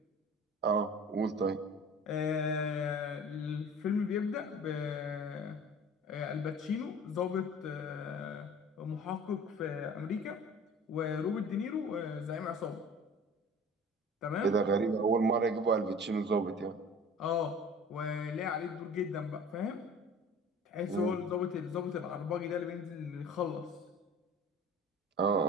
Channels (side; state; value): both; normal; correlation 0.43